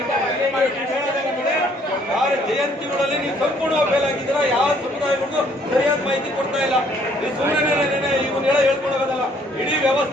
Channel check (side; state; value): both; normal; correlation 0.63